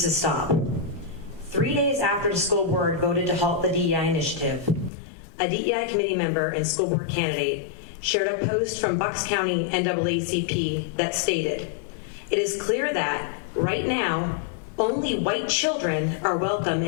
to stop. 3 days after the school board voted to halt the DEI initiative, a DEI committee member and school board candidate shared a post from Bucks County NAACP that stated, "It is clear that, right now, only white children are welcome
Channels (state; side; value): drops out; right; at 4.9 s